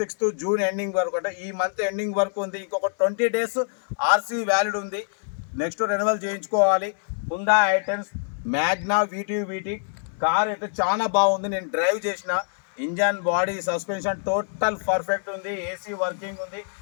జూన్ ఎండింగ్ వరకు, అంటే ఈ మంత్ ఎండింగ్ వరకు ఉంది. ఇంకొక 20 days ఆర్సీ వ్యాలిడ్ ఉంది. నెక్స్ట్ రెన్యువల్ చేయించుకోవాలి. హుండా i10 మ్యాగ్నా వీటీ కార్ అయితే చాలా బాగుంది. నేను డ్రైవ్ చేసిన. Engine, body, suspension total perfect ఉంది. ఏసీ వర్కింగ్ ఉంది.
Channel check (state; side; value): silent; right; digital silence